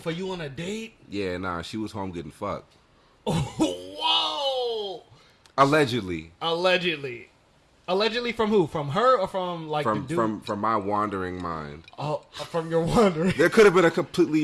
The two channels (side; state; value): both; identical; correlation 1.00